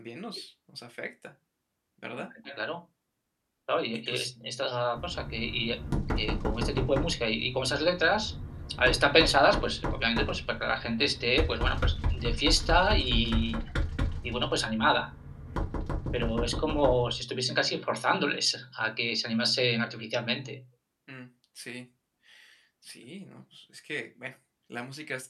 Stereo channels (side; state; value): both; identical; correlation 1.00